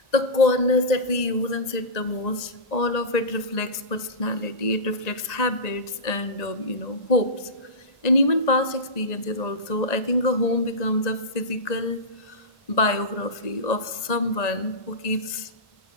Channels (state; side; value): late; right; 1.8 ms